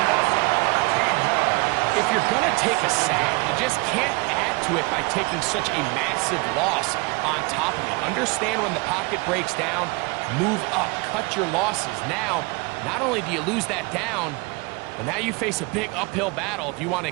If you're going to take a sack, you just can't add to it by taking such a massive loss on top of it. Understand when the pocket breaks down, move up, cut your losses. Now, not only do you lose that down, but now you face a big uphill battle if you want to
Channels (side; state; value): left; quieter; 27.1 dB